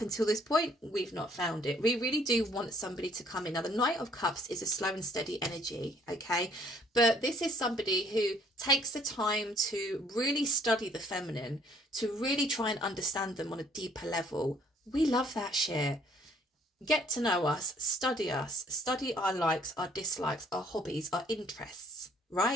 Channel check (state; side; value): normal; both; correlation 0.62